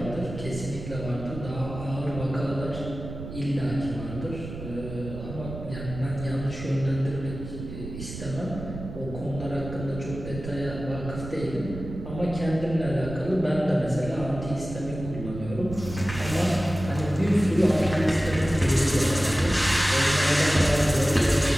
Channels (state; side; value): noise; right; rumble, 10 dB below the sound